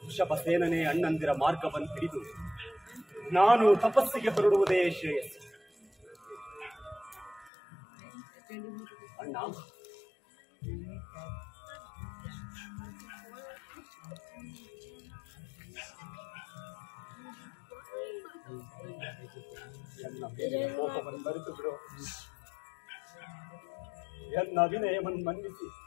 ವೃಷಭಸೇನನೇ ಅಣ್ಣಂದಿರ ಮಾರ್ಗವನ್ನು ಹಿಡಿದು ನಾನು ತಪಸ್ಸಿಗೆ ಹೊರಡುವುದೇ ಶ್ರೇಯಸ್ಸು. ಅಣ್ಣ, ಎನ್ನ ಮೇಲಿನ ಕೋಪವನ್ನು ಮರೆತು ಬಿಡು. ಎನ್ನ ಅಭಿನಯವನ್ನು ಮನ್ನಿಸಿ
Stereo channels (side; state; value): right; drops out; at 7.5 s